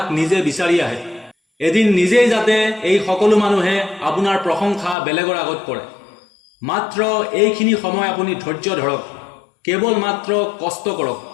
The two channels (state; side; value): drops out; right; at 5.0 s